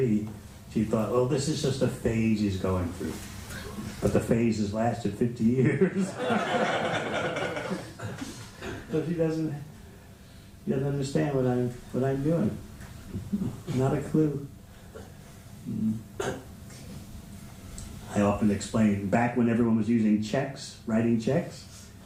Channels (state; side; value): identical; both; correlation 1.00